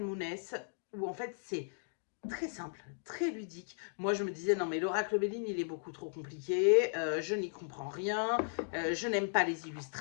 où en fait c'est très simple, très ludique. Moi, je me disais, non, mais l'oracle Béline, il est beaucoup trop compliqué, je n'y comprends rien, je n'aime pas les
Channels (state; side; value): silent; right; digital silence